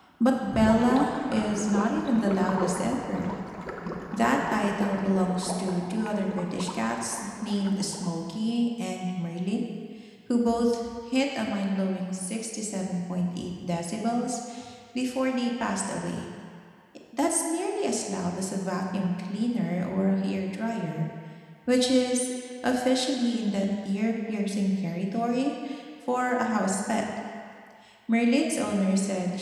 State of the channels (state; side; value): identical; both; correlation 1.00